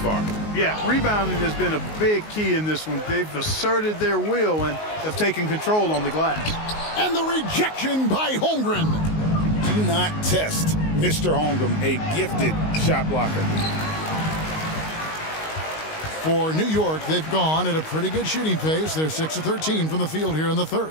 Yeah, rebounding has been a big key in this one. They've asserted their will and have taken control on the glass. And the rejection by Holmgren. Do not test Mr. Holmgren, a gifted shot blocker. For New York, they've gone at a pretty good shooting pace. They're 6 of 13 from the field here in the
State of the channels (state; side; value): late; right; 19 ms